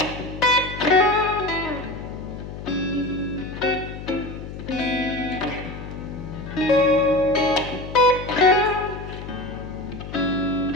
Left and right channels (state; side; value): noise; left; hum, 10 dB below the sound